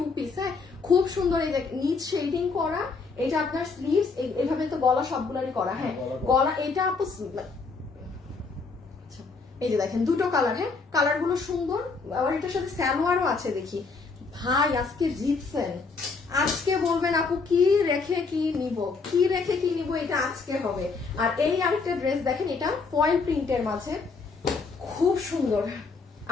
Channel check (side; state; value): right; quieter; 4.5 dB